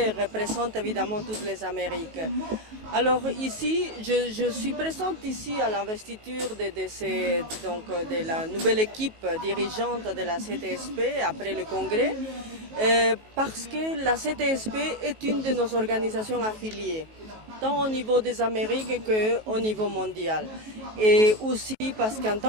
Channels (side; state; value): left; late; 19 ms